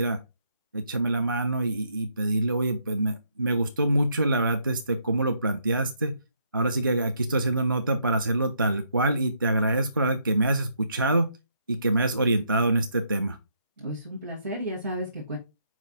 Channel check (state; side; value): inverted; both; correlation -0.73